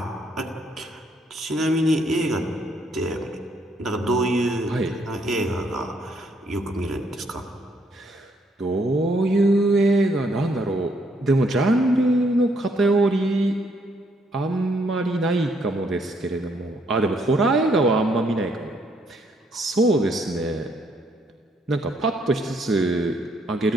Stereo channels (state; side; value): normal; both; correlation 0.71